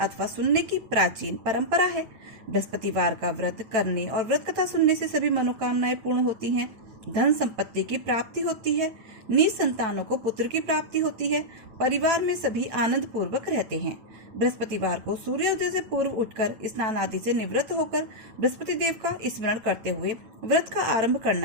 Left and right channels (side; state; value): left; late; 9.0 ms